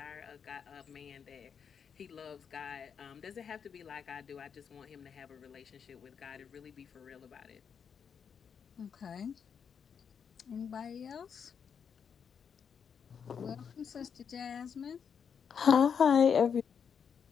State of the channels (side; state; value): right; quieter; 7.0 dB